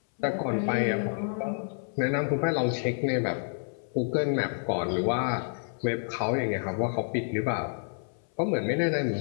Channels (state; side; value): silent; right; 59 dB below the other